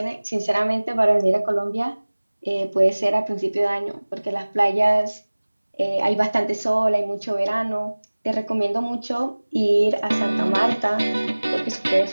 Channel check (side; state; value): both; inverted; correlation -1.00